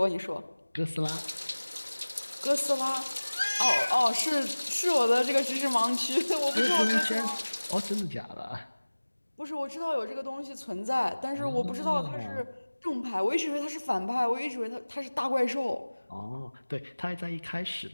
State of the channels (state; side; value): inverted; both; correlation -1.00